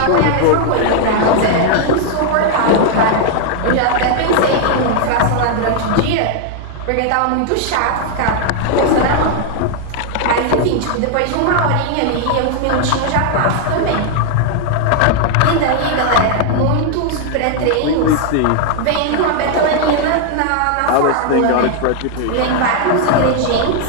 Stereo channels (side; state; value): both; different; correlation 0.00